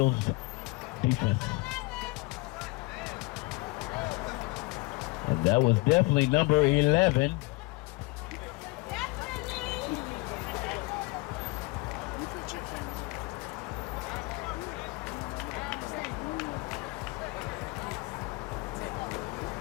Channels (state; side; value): quieter; right; 23.8 dB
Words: defense. And that was definitely number 11.